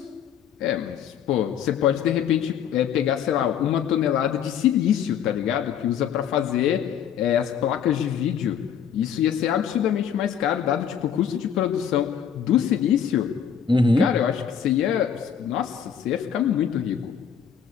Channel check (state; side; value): quieter; right; 8.3 dB